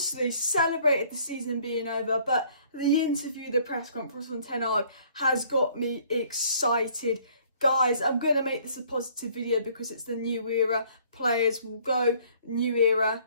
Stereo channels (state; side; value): inverted; both; correlation -0.59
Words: celebrated the season being over, but the interview, the press conference from Ten Hag has got me excited. Guys, I'm going to make this a positive video because it's the new era. Players will go, new era,